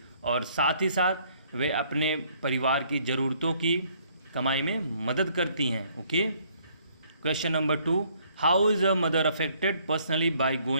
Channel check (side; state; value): both; inverted; correlation -0.64